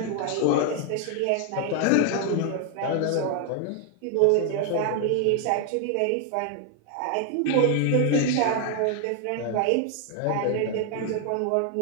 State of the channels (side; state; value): both; different; correlation 0.00